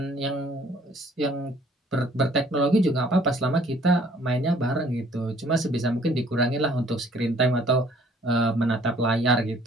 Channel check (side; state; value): both; normal; correlation 0.58